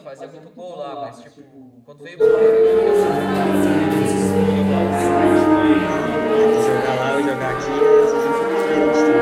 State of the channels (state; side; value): identical; both; correlation 1.00